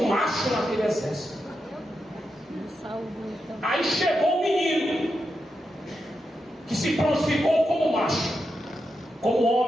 macho naquele exército. Aí chegou o menino, que se prontificou como macho, como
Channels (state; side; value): normal; both; correlation 0.87